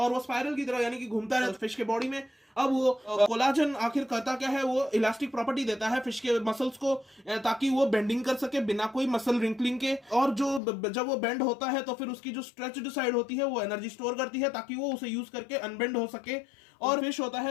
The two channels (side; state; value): right; drops out; at 10.6 s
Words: वो स्पाइरल की तरह यानी कि घूमता है फिश के बॉडी में। अब वो कोलाजन आखिर करता क्या है, वो इलास्टिक प्रॉपर्टी देता है फिश के मसल्स को, ताकि वो बेंडिंग कर सके बिना कोई मसल रिंकलिंग के। और जो जब वो बेंड होता है तो फिर उसकी जो स्ट्रेच्ड साइड होती है वो एनर्जी स्टोर करती है, ताकि वो उसे यूज करके अनबेंड हो सके। और फिश होता